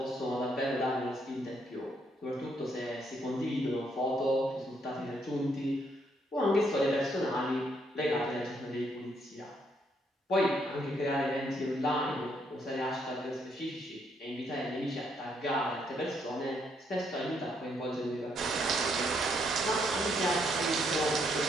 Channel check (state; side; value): normal; both; correlation 0.73